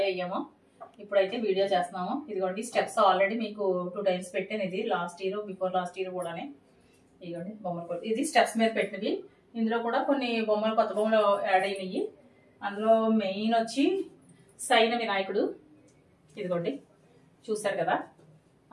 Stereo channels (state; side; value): identical; both; correlation 1.00